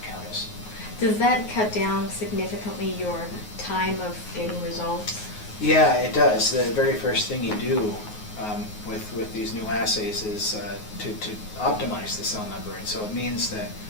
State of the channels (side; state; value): right; late; 9.5 ms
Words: the Countess. Does that cut down significantly your time of getting results? Yeah, it does. The very first thing you do with these new assays is to optimize the cell number, and so it means that